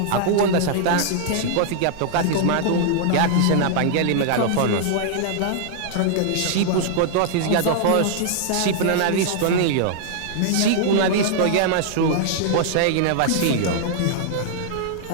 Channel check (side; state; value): both; different; correlation -0.01